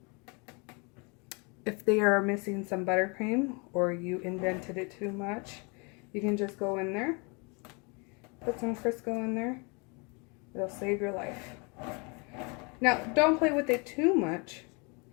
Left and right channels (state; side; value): quieter; right; 31.5 dB